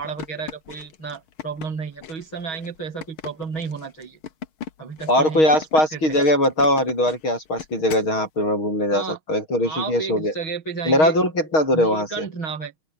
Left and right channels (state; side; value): late; right; 6.6 ms